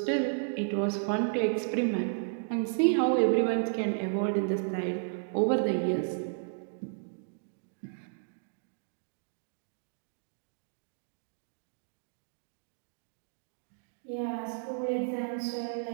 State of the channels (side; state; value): left; silent; digital silence